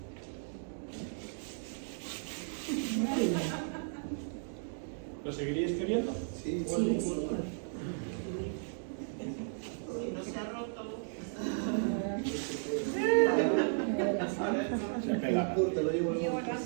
¿Lo seguiríais queriendo? Sí, Sí, sí. Si no se ha roto, se pega. Te lo llevo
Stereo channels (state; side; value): silent; left; digital silence